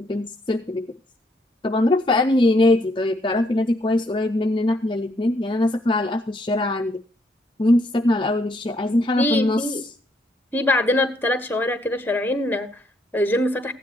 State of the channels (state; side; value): normal; both; correlation 0.71